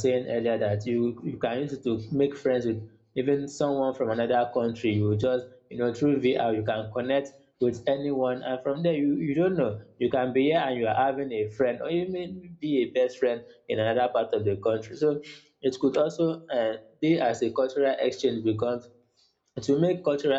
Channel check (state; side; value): identical; both; correlation 1.00